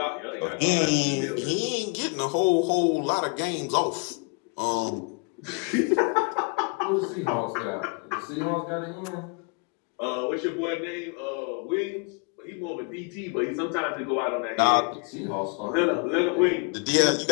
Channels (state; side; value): quieter; right; 34.8 dB